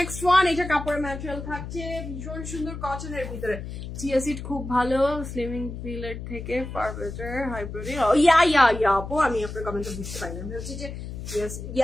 one. এটা কাপড়ের ম্যাটেরিয়াল থাকছে ভীষণ সুন্দর কটনের ভিতরে। চিয়া সিড খুব ভালো, স্লিমিং পিলের থেকে ফার বেটার, হাই প্রোটিন। ইয়া আপু, আমি আপনার কমেন্টটা বুঝতে পারি না। আমি হচ্ছে যে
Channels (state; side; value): noise; left; hum, 8 dB below the sound